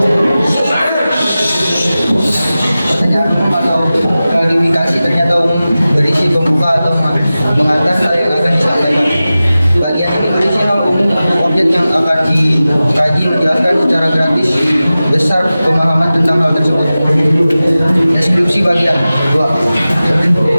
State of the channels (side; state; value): both; inverted; correlation -0.95